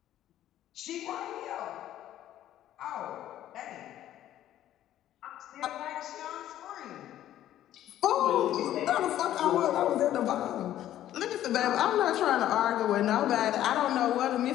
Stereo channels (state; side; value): quieter; right; 12.5 dB